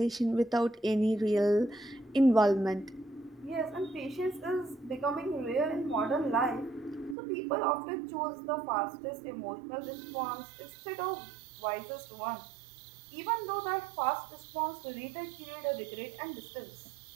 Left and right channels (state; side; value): drops out; left; at 7.2 s